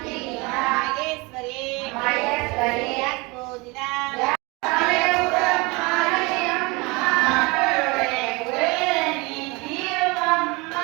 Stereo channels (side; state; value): left; quieter; 26.0 dB